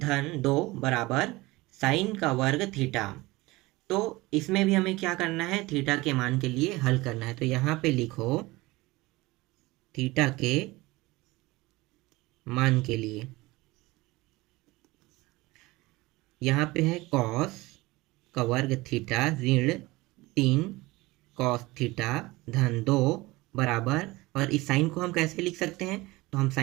2 बराबर साइन का वर्ग थीटा। तो इसमें भी हमें क्या करना है, थीटा के मान के लिए हल करना है। तो यहाँ पे लिखो थीटा के मान के लिए, यहाँ पे है कॉस का वर्ग थीटा ऋण 3 कॉस थीटा धन 2 बराबर, और इस साइन को हम कैसे लिख सकते हैं, तो हम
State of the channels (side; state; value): left; quieter; 21.0 dB